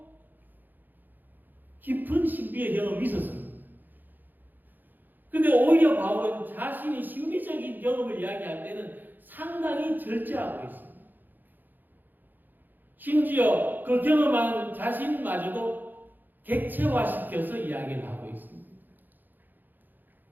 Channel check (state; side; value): late; left; 0.088 ms